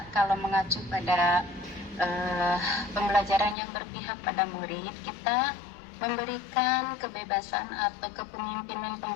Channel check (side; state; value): right; drops out; at 3.6 s